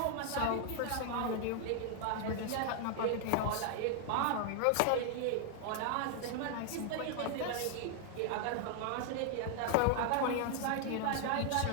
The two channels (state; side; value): different; both; correlation 0.00